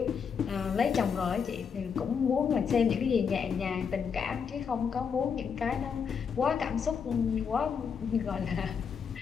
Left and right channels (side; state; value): right; quieter; 6.5 dB